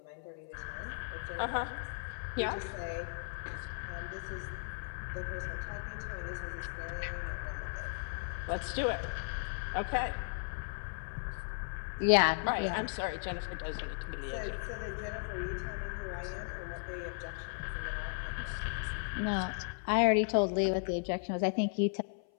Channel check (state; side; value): silent; right; 54 dB below the other